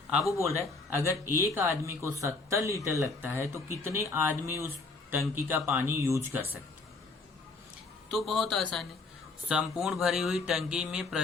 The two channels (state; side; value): quieter; right; 3.8 dB